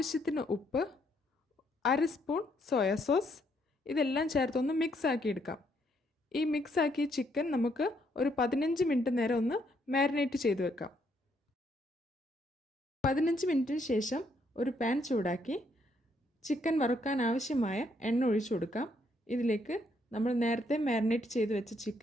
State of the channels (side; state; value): both; normal; correlation 0.72